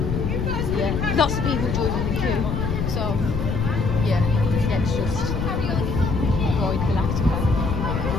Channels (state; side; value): noise; left; rumble, 1 dB below the sound